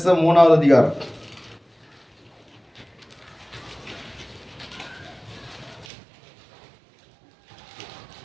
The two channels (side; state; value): left; drops out; at 5.9 s